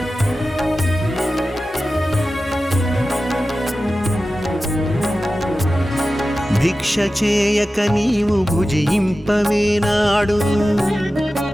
భిక్ష చేయక నీవు భుజింపవేనాడు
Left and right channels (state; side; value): normal; both; correlation 0.94